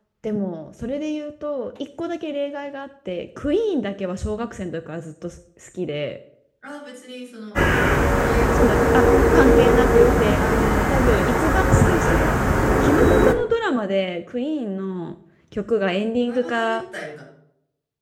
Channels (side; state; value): both; identical; correlation 1.00